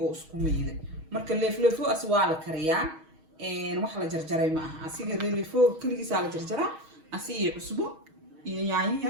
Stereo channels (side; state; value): left; late; 6.3 ms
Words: oo isku meeyday marka leefleefo aswaa la kariyaa wax la jarjaray ma aha asiga leefleefo kaligiisa la jarjaraa asiga cusbo iyo